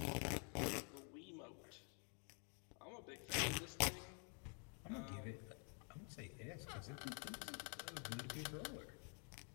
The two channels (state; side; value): quieter; right; 39.7 dB